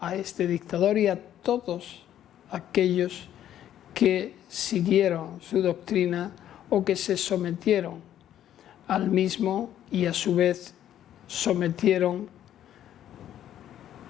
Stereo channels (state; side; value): quieter; right; 11.2 dB